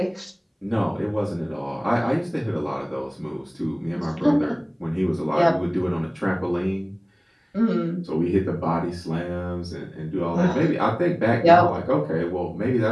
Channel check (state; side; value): identical; both; correlation 1.00